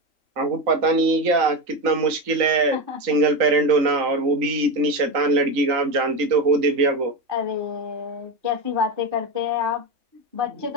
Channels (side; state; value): left; late; 3.9 ms